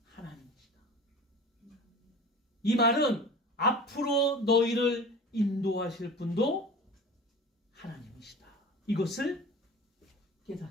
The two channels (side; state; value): both; normal; correlation 0.37